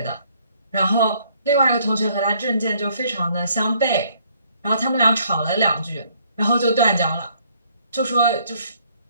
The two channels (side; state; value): both; inverted; correlation -0.65